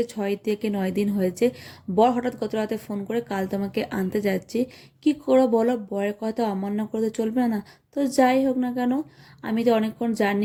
6 থেকে 9 দিন হয়েছে। বর হঠাৎ গত রাতে ফোন করে কাল তোমাকে আনতে যাচ্ছি। কি করো বলো, বরের কথা অমান্য করে তো চলবে না। তো যাই হোক না কেন, আমি তো অনেকক্ষণ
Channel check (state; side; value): identical; both; correlation 1.00